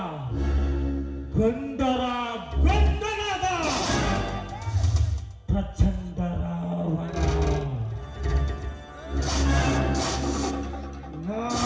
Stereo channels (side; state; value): both; identical; correlation 1.00